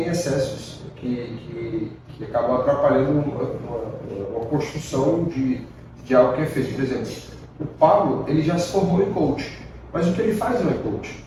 excessos que acabam atrapalhando uma construção de algo que é feito. Por exemplo, o Pablo, ele já se formou em coach, mas o que ele faz não é coach.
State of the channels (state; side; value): identical; both; correlation 1.00